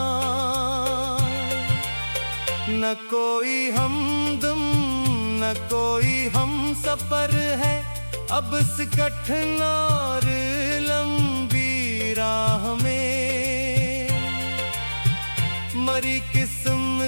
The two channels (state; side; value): inverted; both; correlation -1.00